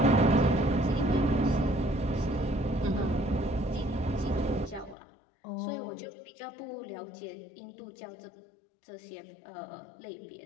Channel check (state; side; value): drops out; right; at 5.0 s